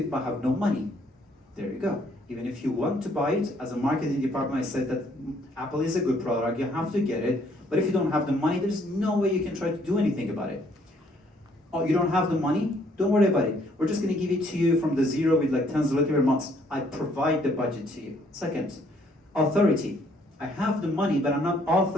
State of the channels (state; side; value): normal; both; correlation 0.65